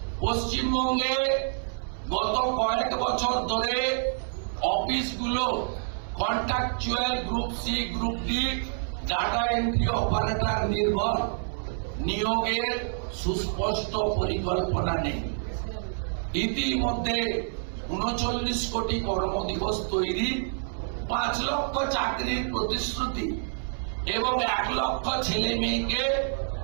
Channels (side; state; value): left; silent; 60 dB below the other